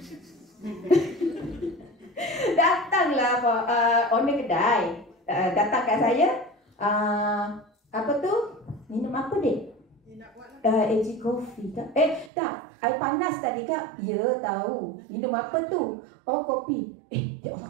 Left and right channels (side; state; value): left; drops out; at 12.3 s